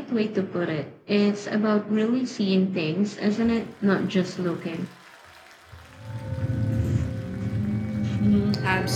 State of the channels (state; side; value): identical; both; correlation 1.00